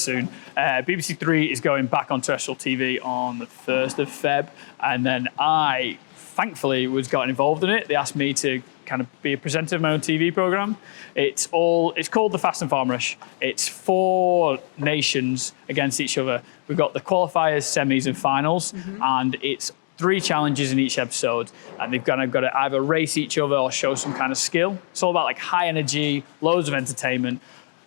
BBC Three is going back on terrestrial TV on the 1st of Feb, and then I, thankfully, gotten involved in it. They asked me to kind of be a presenter of my own TV program. It's called The Fast and Farmerish. It's 4 nations against each other. We've got the qualifiers, semis, and finals, and it's 3 challenges in each episode, and they've kind of got to either race each other or show some kind of skill. It's all about like high energy, loads of entertainment.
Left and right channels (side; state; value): right; silent; digital silence